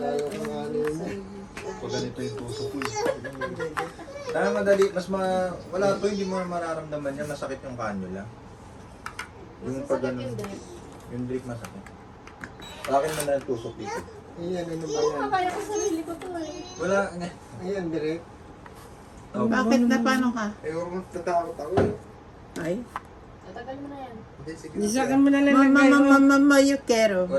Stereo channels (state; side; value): identical; both; correlation 1.00